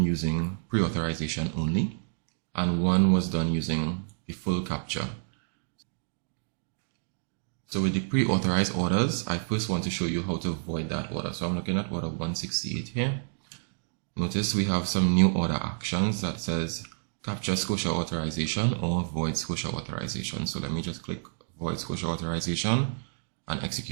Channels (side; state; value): left; silent; digital silence